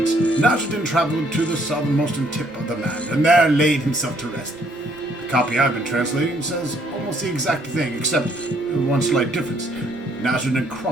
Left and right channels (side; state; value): both; normal; correlation 0.66